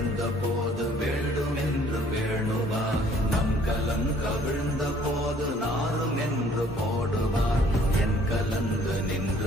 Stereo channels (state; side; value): normal; both; correlation 0.58